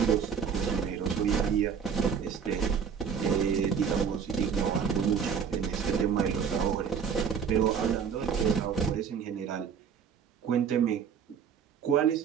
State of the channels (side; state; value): left; quieter; 7.0 dB